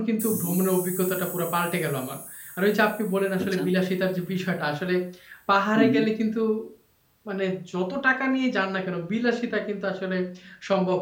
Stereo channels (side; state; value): both; identical; correlation 1.00